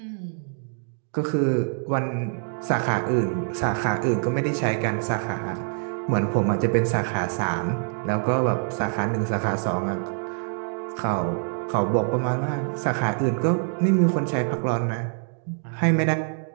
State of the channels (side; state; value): left; silent; 62 dB below the other